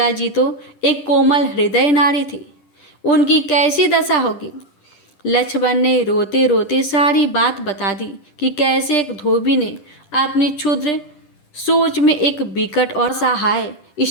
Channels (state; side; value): late; right; 10 ms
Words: जी तो एक कोमल हृदय नारी थी, उनकी कैसी दशा होगी। लक्ष्मण ने रोते रोते सारी बात बता दी कि कैसे एक धोबी ने अपनी क्षुद्र सोच में एक विकट और सहाय